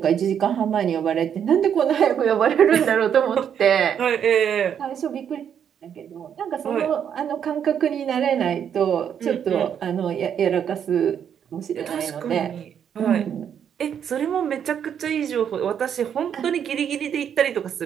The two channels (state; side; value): quieter; left; 8.5 dB